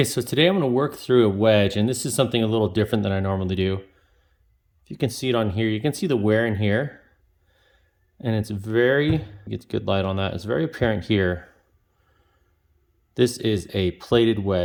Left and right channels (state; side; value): identical; both; correlation 1.00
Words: so today I'm going to work through a wedge, and this is something a little different than I normally do. If you can see it on here, you can see the wear in here, and it's very, get good light on that, it's very apparent here. This is a plated